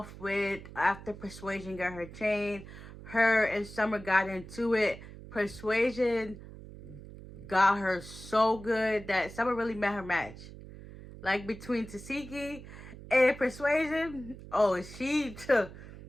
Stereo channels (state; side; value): noise; right; hum, 15 dB below the sound